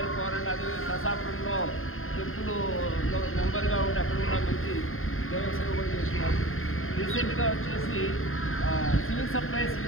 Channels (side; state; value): right; late; 0.60 ms